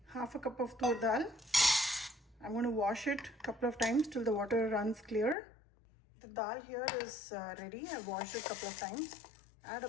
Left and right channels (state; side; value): drops out; right; at 5.4 s